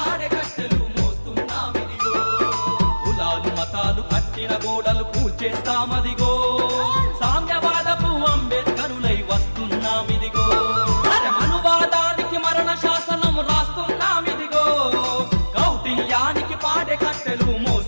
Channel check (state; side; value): inverted; both; correlation -1.00